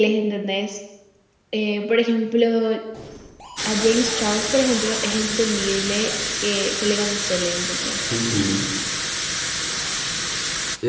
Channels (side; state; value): both; identical; correlation 1.00